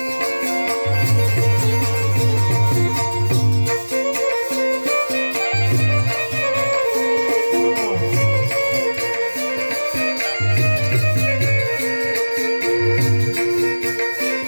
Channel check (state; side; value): inverted; both; correlation -1.00